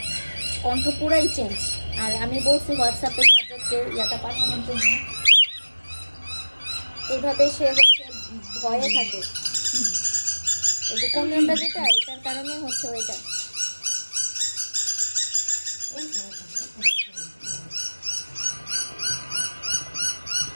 কণ্ঠ পুরাই চেঞ্জ। আর আমি বলছি হোয়াটসঅ্যাপে সাবজেক্টকে ইয়াটা পাঠানোর জন্য, এইভাবে সে হচ্ছে ভয়ে থাকে। এই যে কমিউনটা যেটা, এটার কারণে হচ্ছে ওইটা।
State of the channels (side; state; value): both; inverted; correlation -1.00